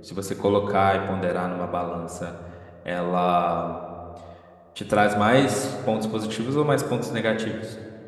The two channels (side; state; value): both; identical; correlation 1.00